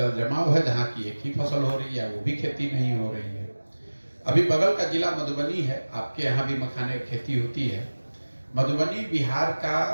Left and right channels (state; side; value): inverted; both; correlation -1.00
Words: जमाव है, जहाँ की एक ही फसल हो रही है, वो भी खेती नहीं हो रही है। अभी बगल का जिला मधुबनी है, आपके यहाँ भी मखाने की खेती होती है। मधुबनी बिहार